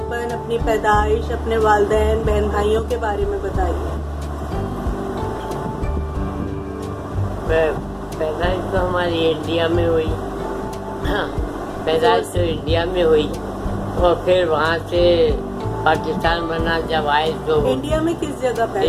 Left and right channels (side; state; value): both; identical; correlation 1.00